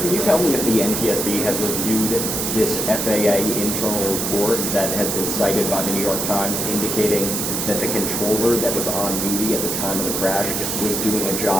you tell me if the NTSB has reviewed this FAA internal report that has been cited by the New York Times indicating that the controller that was on duty at the time of the crash was doing a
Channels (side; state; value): right; noise; hiss, 1 dB below the sound